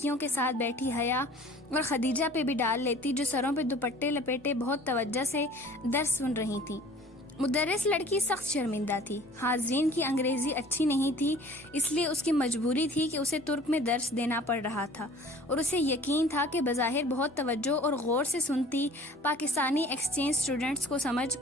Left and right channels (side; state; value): both; normal; correlation 0.48